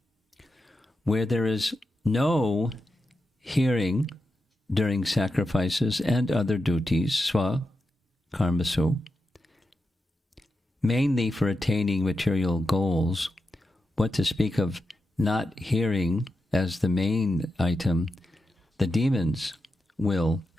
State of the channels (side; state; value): both; normal; correlation 0.89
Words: where there is no hearing during sacrifices and other duties, swa, karmasu, mainly for attaining material goals, what to speak of not hearing as the main item, the demons will